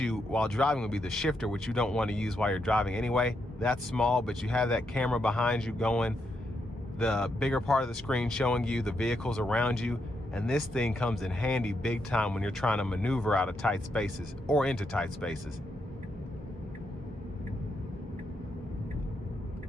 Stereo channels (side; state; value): both; normal; correlation 0.81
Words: while driving would be the shifter, which you don't want to use while you're driving anyway. That's small, but you have that camera behind you going, the bigger part of the screen showing you the vehicles around you, and this thing comes in handy big time when you're trying to maneuver out of tight spaces or into tight spaces.